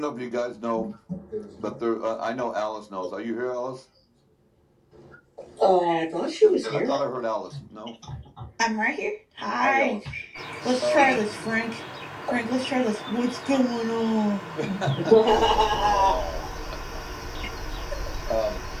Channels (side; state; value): both; identical; correlation 1.00